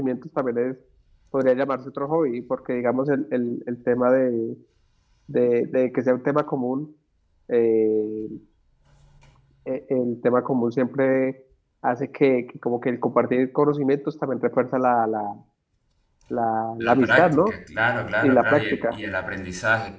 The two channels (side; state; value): both; identical; correlation 1.00